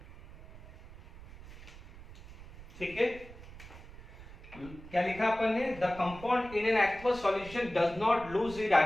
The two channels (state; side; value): noise; right; rumble, 17 dB below the sound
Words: ठीक है। क्या लिखा अपन ने, the compound in an aqueous solution does not lose it